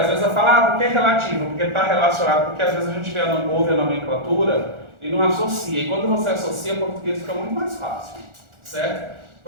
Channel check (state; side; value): late; left; 1.4 ms